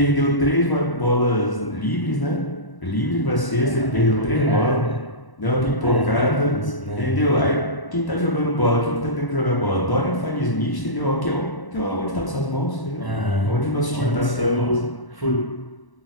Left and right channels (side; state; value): right; late; 1.0 ms